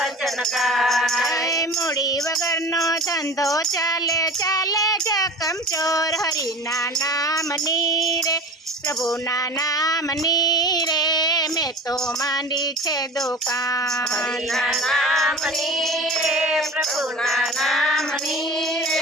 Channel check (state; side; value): normal; both; correlation 0.37